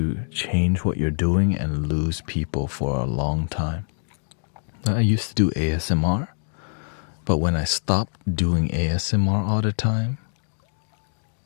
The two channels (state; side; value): silent; right; 60 dB below the other